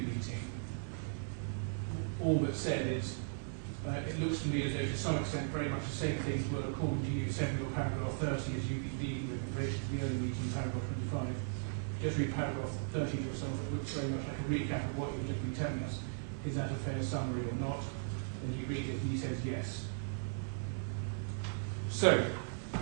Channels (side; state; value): left; silent; digital silence